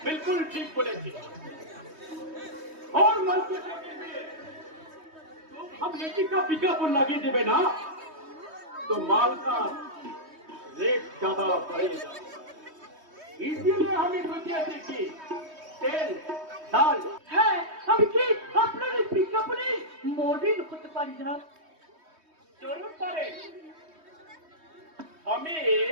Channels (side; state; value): left; late; 3.2 ms